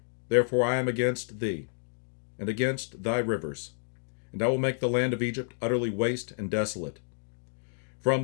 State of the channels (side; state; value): right; silent; digital silence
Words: therefore I am against thee, and against thy rivers, and I will make the land of Egypt utterly waste and desolate, from